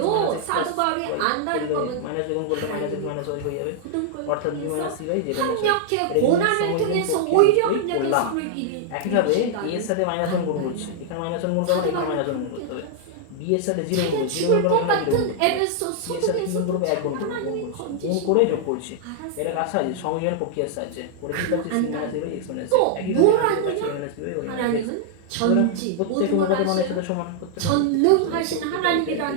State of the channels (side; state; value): both; different; correlation -0.01